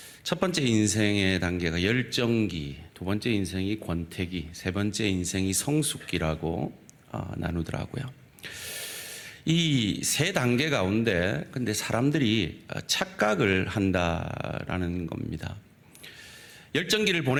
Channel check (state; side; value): identical; both; correlation 1.00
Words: 첫 번째 인생의 단계가 열정기, 두 번째 인생이 권태기, 세 번째 인생이 성숙기라고 나누더라고요. 이 세 단계 가운데 근데 사람들이 착각을 한다라는 겁니다. 열정기를